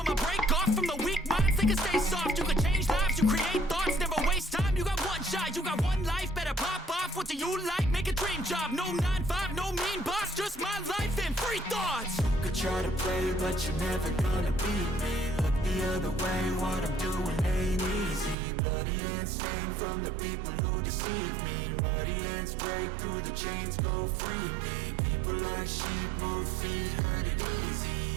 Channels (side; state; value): left; drops out; at 18.4 s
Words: a break off from the weak minds. They can stay soft, you can change lives, you create thoughts, never waste time. You got one shot, you got one life, better pop off. What do you like? Make a dream job. No 9-5, no mean boss, just my life and free thoughts. You could try to play, but you're never gonna beat me. Look the other way, what I'm doing ain't easy. Bloody hands stained from the people who deceive me. Muddy hands break through the chains, go free me. People like sheep move feet, hurt it easy.